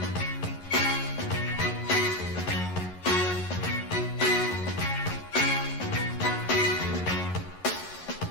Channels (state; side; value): late; right; 11 ms